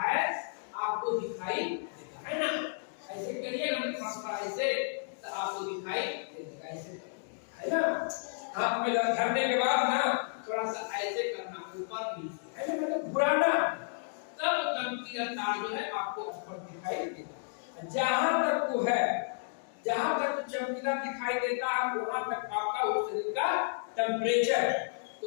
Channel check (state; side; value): silent; right; digital silence